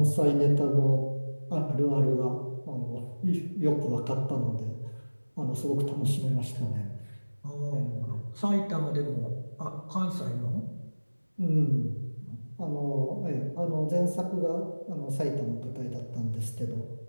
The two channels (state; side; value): inverted; both; correlation -1.00